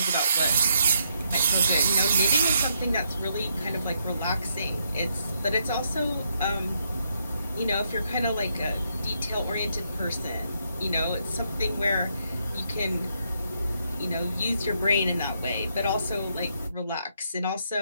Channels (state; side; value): inverted; both; correlation -0.76